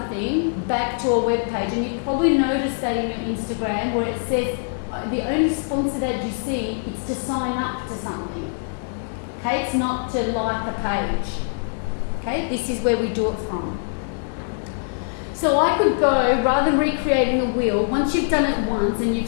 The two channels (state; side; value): silent; right; digital silence